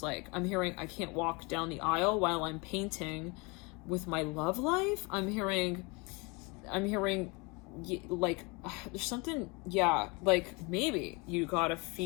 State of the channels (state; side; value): quieter; right; 28.5 dB